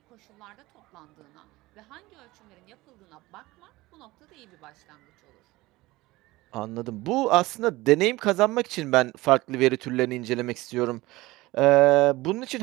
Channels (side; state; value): left; quieter; 19.6 dB